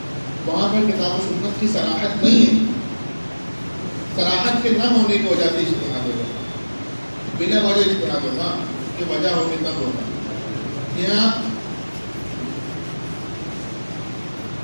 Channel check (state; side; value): inverted; both; correlation -1.00